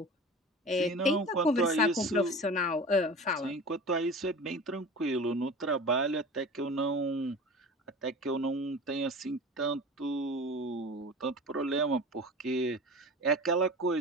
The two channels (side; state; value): both; normal; correlation 0.35